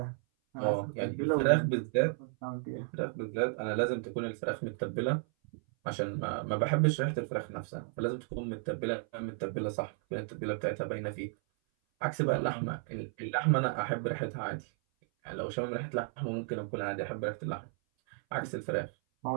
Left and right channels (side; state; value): left; silent; 55 dB below the other